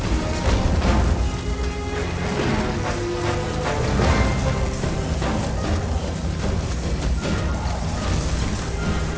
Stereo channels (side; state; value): both; identical; correlation 1.00